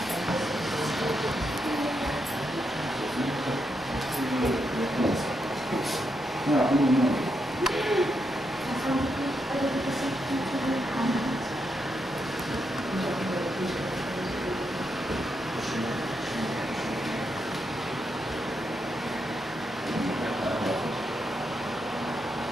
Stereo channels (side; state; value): both; normal; correlation 0.82